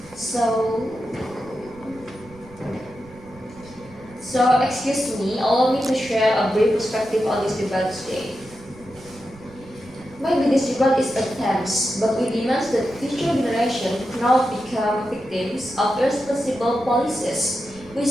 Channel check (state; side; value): noise; right; rumble, 22 dB below the sound